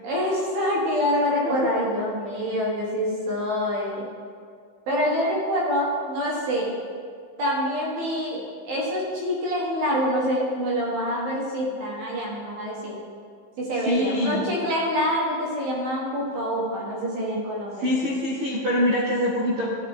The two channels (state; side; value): late; left; 15 ms